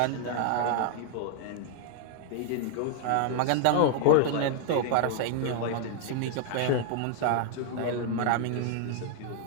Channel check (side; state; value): both; different; correlation 0.00